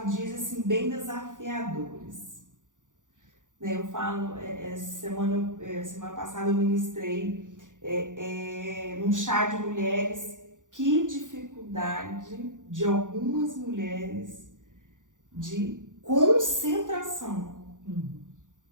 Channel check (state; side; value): late; left; 0.87 ms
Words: dias assim bem desafiadores, né? Eu falo, semana passada eu ministrei num chá de mulheres, que dificuldade de algumas mulheres de concentração.